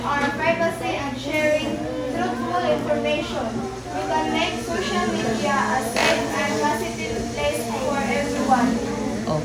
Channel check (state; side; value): identical; both; correlation 1.00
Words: our privacy, and sharing truthful information, we can make social media a safe and positive place for everyone.